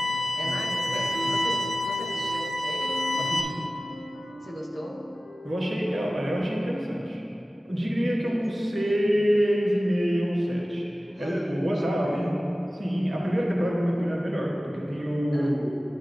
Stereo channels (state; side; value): normal; both; correlation 0.96